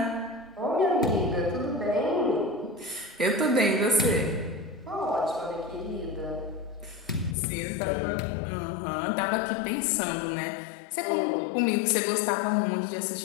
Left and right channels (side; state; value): right; drops out; at 7.4 s